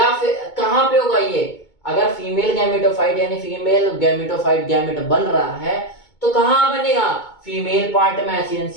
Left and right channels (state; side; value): late; right; 2.2 ms